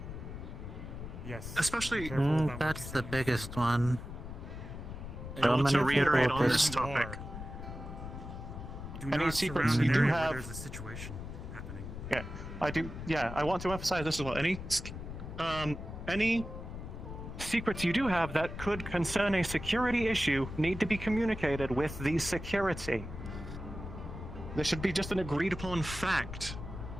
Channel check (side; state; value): left; noise; rumble, 9 dB below the sound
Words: Yes. Especially- be careful about what That's you the biggest one. I want to many reiterate people on this just- topic. Do Any not secrets surround you an do area where have- there's a situation happening. Yeah, I do. Yeah, I want to emphasize this as well. Any secrets you do have that could concern a security issue need to be communicated with the security. There should be just an agreed upon fact.